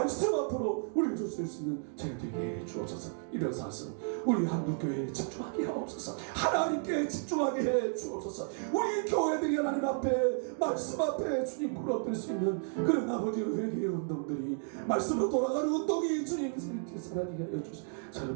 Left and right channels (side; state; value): left; silent; 56 dB below the other